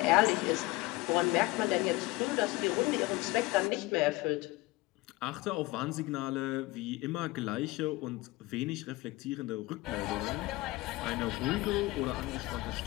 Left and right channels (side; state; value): right; quieter; 20.9 dB